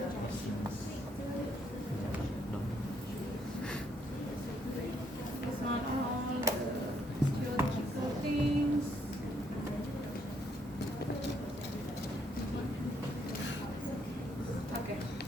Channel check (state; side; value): normal; both; correlation 0.71